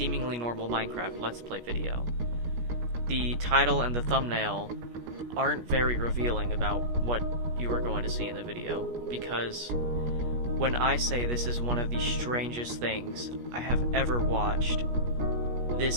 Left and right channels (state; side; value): late; left; 17 ms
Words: normal Minecraft Let's Play video. The title and the thumbnail aren't very revealing about what you are going to see in the video, because when I say this is one of the strangest things I have ever watched,